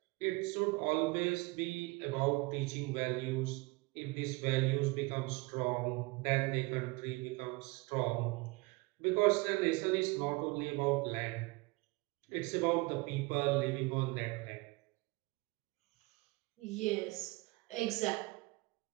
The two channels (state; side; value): quieter; left; 24.6 dB